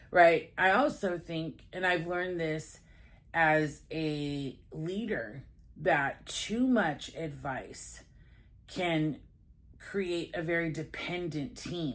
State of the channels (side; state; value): both; identical; correlation 1.00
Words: Right? I also think, and I've learned this as a leader, that too much advice can create a very dependent